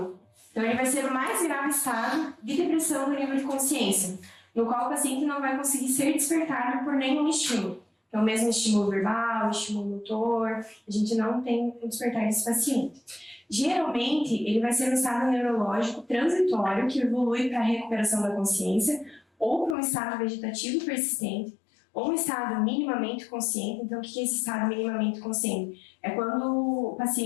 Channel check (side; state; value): right; drops out; at 19.8 s